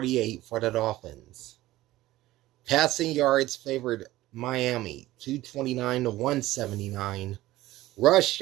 for the Dolphins. Passing yards favored Miami, 229 to 179. Rush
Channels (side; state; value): left; quieter; 16.5 dB